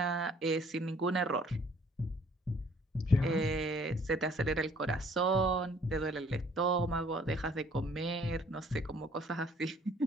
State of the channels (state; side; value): normal; both; correlation 0.59